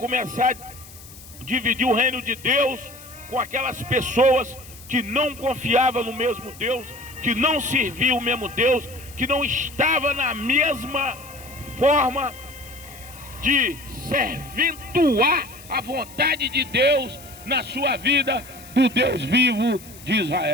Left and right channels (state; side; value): noise; left; hiss, 19 dB below the sound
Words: a dividir o reino de Deus com aquelas pessoas que não confiavam no mesmo Deus, que não serviam o mesmo Deus, que não estava na mesma forma de serventuar a vontade de Deus na sua vida, do Deus vivo de